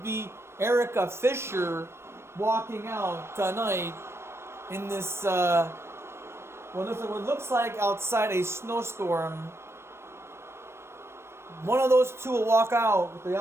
be Erica Fisher walking out tonight in this, what looks like outside a snowstorm. One of those two will walk out with the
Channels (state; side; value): late; left; 0.12 ms